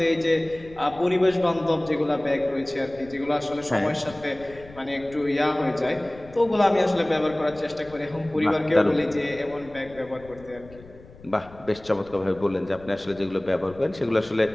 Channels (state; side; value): noise; left; rumble, 21 dB below the sound